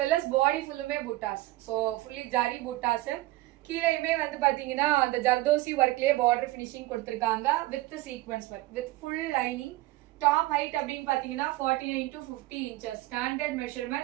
well as body ஃபுல்லுமே புட்டாஸ். So fully ஜரி புட்டாஸ். கீழேயுமே வந்து பாத்தீங்கன்னா அந்த ஜர்தோசி ஒர்க்லயே பார்டர் ஃபினிஷிங் கொடுத்திருக்காங்க with sequence work with full lining. Top height அப்படின்னு பாத்தீங்கன்னா 49 to 50 inches ஸ்டாண்டர்ட்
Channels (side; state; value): left; quieter; 18.1 dB